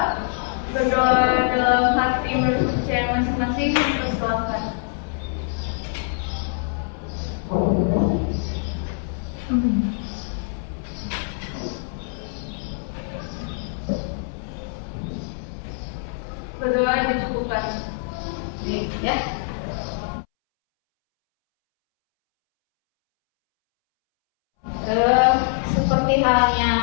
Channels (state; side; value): silent; right; 63 dB below the other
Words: Berdoa dalam hati menurut percaya masing-masing. Persilakan. Berdoa dicukupkan. Nih, ya. Seperti